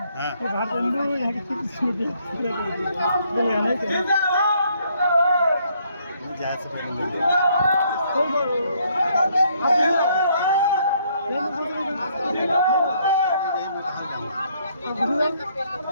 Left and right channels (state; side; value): inverted; both; correlation -0.68